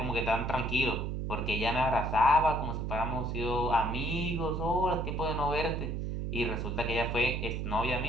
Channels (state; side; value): noise; right; hum, 2 dB below the sound